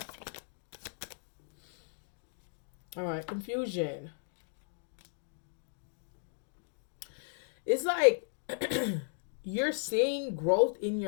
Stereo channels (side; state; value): right; silent; digital silence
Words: All right, confusion. It's like you're seeing growth in